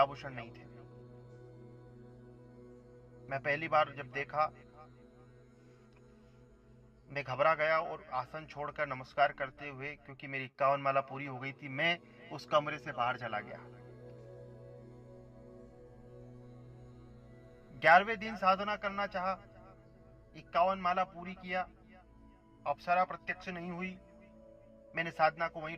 नहीं थे। मैं पहली बार जब देखा, मैं घबरा गया और आसन छोड़कर नमस्कार करते हुए, क्योंकि मेरी 51 माला पूरी हो गई थी, मैं उस कमरे से बाहर चला गया। 11वें दिन साधना करना चाहा, 51 माला पूरी किया, अप्सरा प्रत्यक्ष नहीं हुई। मैंने साधना को वहीं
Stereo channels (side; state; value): both; identical; correlation 1.00